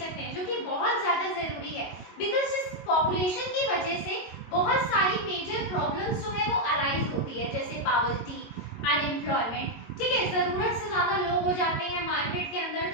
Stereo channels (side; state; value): right; late; 22 ms